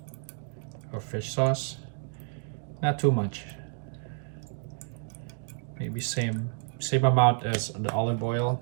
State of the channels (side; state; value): left; silent; digital silence